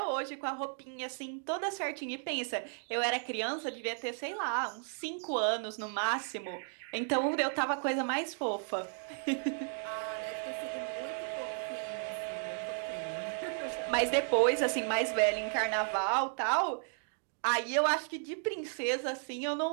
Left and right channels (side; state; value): left; silent; 55 dB below the other